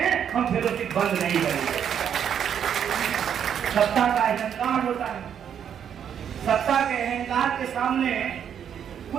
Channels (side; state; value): left; quieter; 8.6 dB